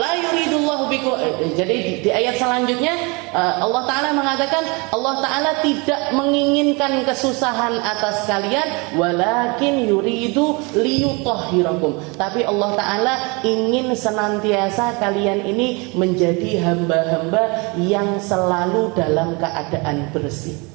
yuridullahu bikum. Jadi di ayat selanjutnya Allah Ta'ala mengatakan Allah Ta'ala tidak menginginkan kesusahan atas kalian, walakin yuridu liyutahhirakum, tapi Allah Ta'ala ingin senantiasa kalian ini menjadi hamba-hamba yang selalu dalam keadaan bersih.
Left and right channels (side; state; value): left; quieter; 28.8 dB